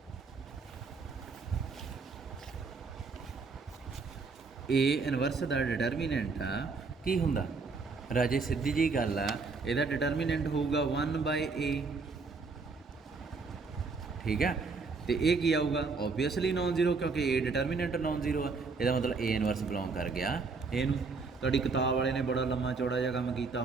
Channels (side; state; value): left; quieter; 4.4 dB